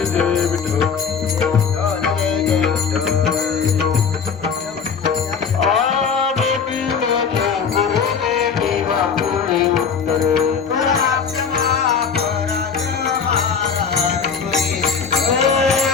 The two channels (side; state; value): right; quieter; 6.2 dB